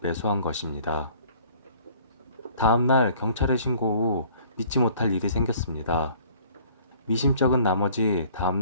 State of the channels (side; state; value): both; inverted; correlation -0.54